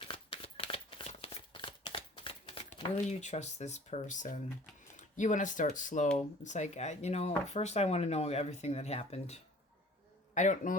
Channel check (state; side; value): normal; both; correlation 0.49